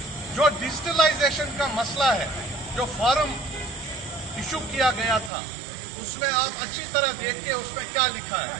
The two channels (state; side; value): drops out; left; at 5.3 s